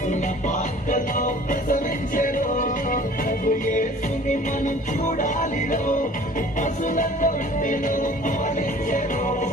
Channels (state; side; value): normal; both; correlation 0.48